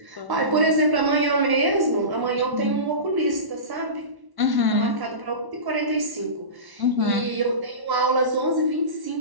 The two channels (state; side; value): late; left; 1.1 ms